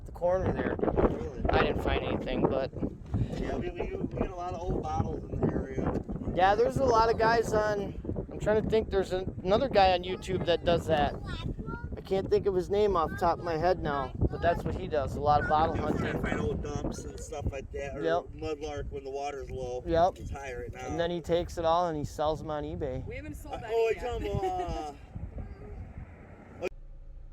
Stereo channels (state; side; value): identical; both; correlation 1.00